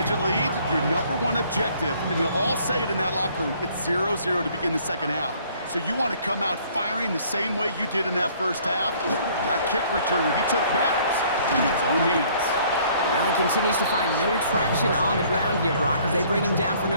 lead, your number one objective, and they'll all say it in that locker room, it's 0-0 to begin the second half. So you want to come out firing the same way you did in that first half. That kick returner he took matters in his own hands. Well, he continues to find no traction on the ground here, Brock, as they bring him down for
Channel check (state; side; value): inverted; both; correlation -0.59